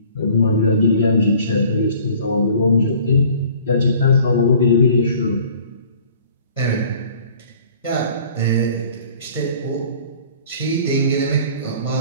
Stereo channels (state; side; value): inverted; both; correlation -0.51